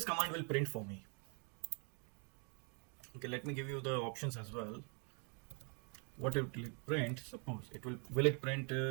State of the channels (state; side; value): quieter; left; 37.5 dB